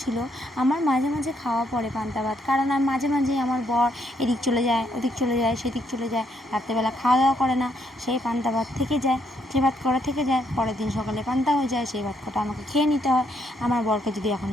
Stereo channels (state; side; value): normal; both; correlation 0.74